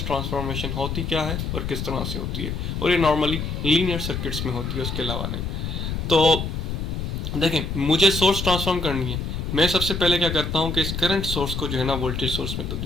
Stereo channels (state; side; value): noise; left; rumble, 4 dB below the sound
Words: ट्रांसफॉर्मेशन होती क्या है और किस तरह से होती है, और ये नॉर्मली लीनियर सर्किट्स में होती है, उसके अलावा नहीं। तो देखें, मुझे सोर्स ट्रांसफॉर्म करनी है। मैं सबसे पहले क्या करता हूँ कि इस करंट सोर्स को जो है ना वोल्टेज सोर्स में